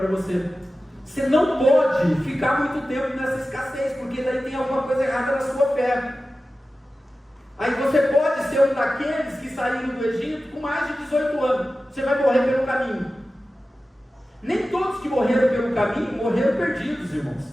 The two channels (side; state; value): both; normal; correlation 0.94